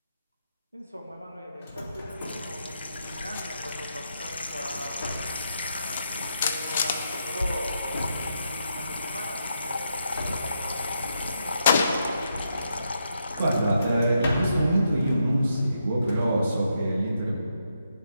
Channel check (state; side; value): inverted; both; correlation -0.80